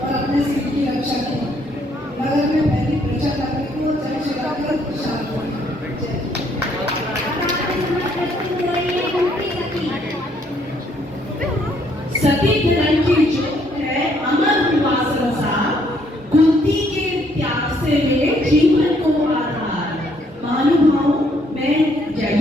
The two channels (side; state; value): both; normal; correlation 0.68